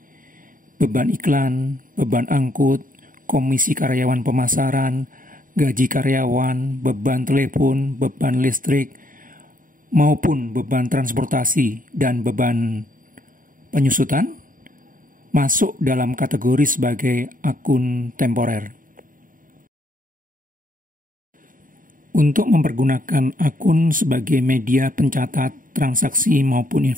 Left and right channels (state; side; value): late; left; 0.39 ms